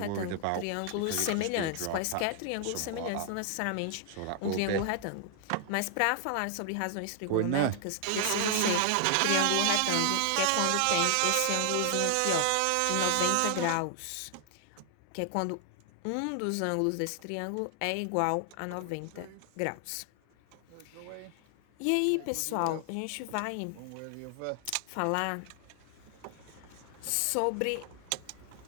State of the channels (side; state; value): both; different; correlation 0.00